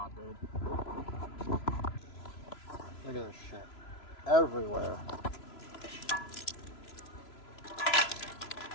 good. Look at this shit. Everywhere.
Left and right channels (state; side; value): late; right; 3.0 ms